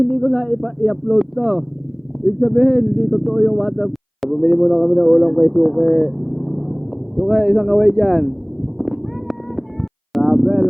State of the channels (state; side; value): identical; both; correlation 1.00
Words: ko na i-upload to, ibig sabihin hindi totoo yung waterproof. Bumili muna kami ng ulam kay Suke. Suke, isang kaway dyan. Grabe,